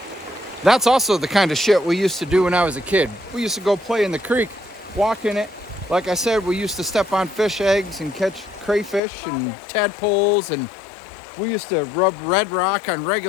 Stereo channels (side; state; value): right; drops out; at 9.0 s